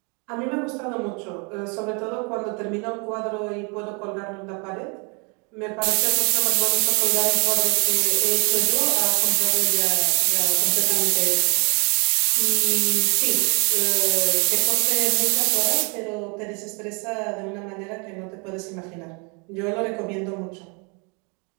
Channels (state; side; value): quieter; left; 33.8 dB